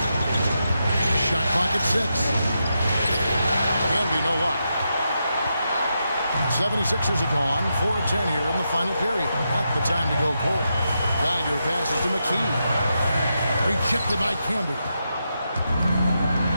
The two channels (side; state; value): both; inverted; correlation -0.85